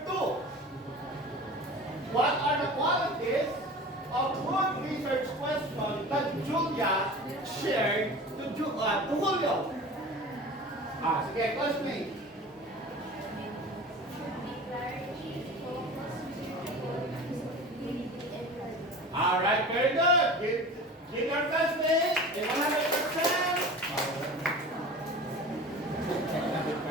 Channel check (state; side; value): normal; both; correlation 0.37